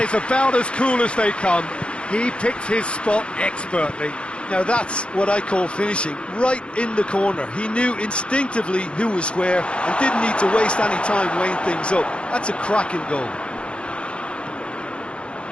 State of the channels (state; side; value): late; right; 0.058 ms